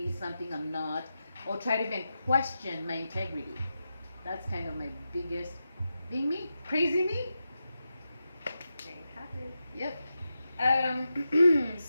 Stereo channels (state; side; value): inverted; both; correlation -0.89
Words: something I'm not, or try to even question my integrity. That's kind of my biggest, being me, crazy me. There you have it. Yep.